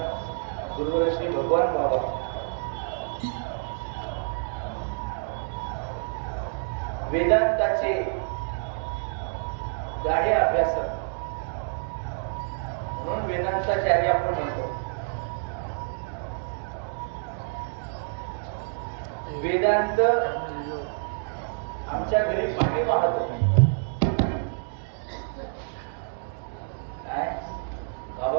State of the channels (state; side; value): silent; left; digital silence